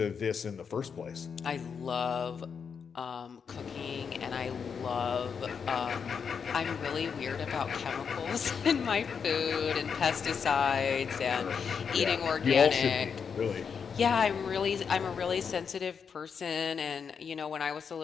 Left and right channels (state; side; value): quieter; right; 6.4 dB